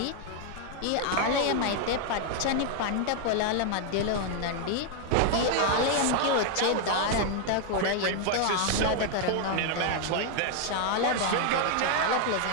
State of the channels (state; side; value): different; both; correlation 0.00